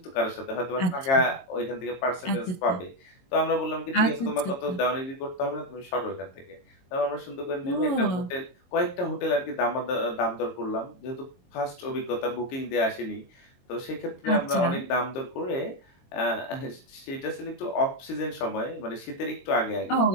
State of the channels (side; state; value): right; late; 22 ms